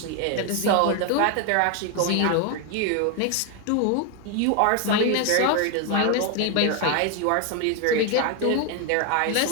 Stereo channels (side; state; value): both; different; correlation 0.01